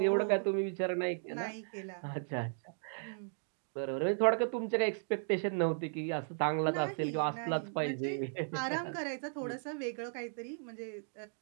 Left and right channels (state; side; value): silent; left; digital silence